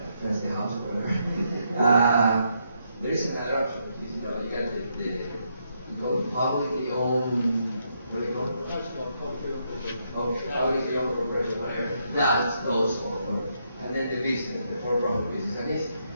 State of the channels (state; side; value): inverted; both; correlation -0.78